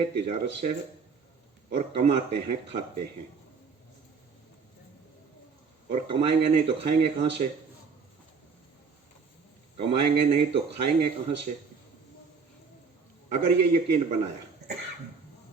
तिजारत से है, और कमाते हैं, खाते हैं। और कमाएंगे नहीं तो खाएंगे कहां से, कमाएंगे नहीं तो खाएंगे कहां से। अगर ये यकीन बनाया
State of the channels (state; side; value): quieter; left; 5.2 dB